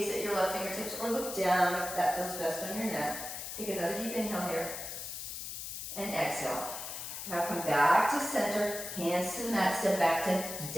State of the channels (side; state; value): left; noise; hiss, 7 dB below the sound